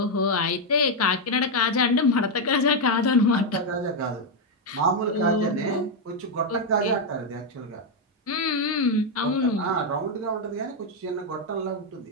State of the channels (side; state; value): both; normal; correlation 0.02